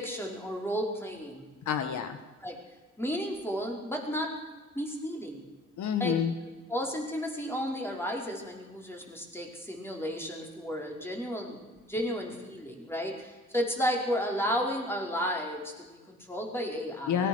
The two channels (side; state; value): both; normal; correlation 0.48